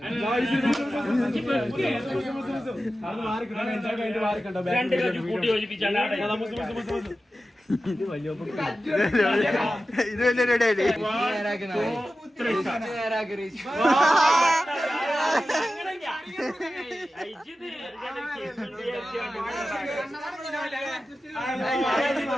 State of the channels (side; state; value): both; normal; correlation 0.94